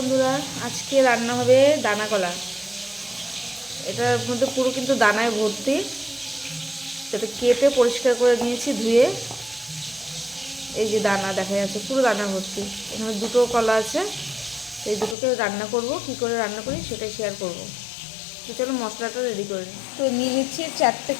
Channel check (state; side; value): drops out; right; at 15.2 s